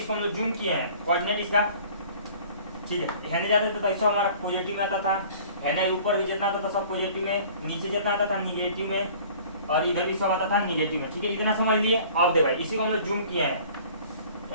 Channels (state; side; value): inverted; both; correlation -0.49